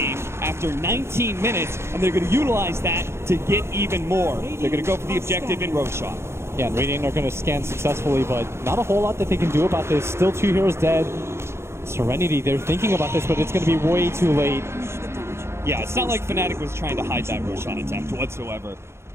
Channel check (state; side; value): late; left; 0.13 ms